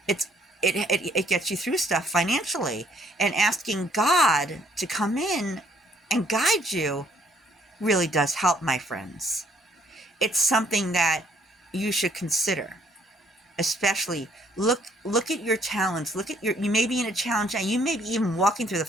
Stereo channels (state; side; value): normal; both; correlation 0.66